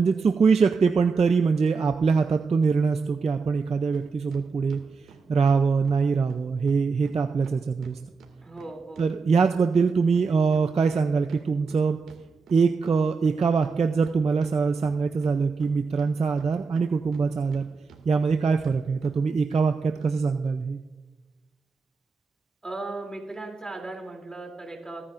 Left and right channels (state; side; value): quieter; left; 4.8 dB